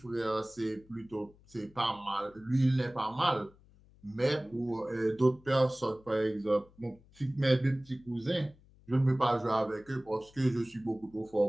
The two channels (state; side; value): noise; left; hum, 27 dB below the sound